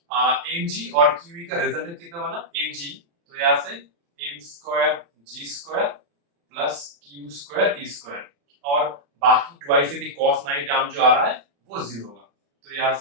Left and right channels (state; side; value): late; left; 35 ms